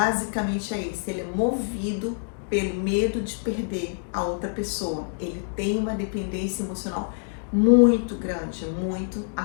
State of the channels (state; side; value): silent; right; digital silence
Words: é esse: ele é movido pelo medo de perder a outra pessoa. Ele tem uma dependência emocional muito grande, muito